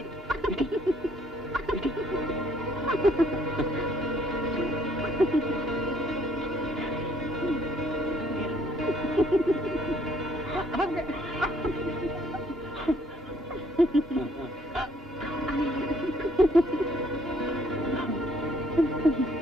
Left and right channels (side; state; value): both; normal; correlation 0.64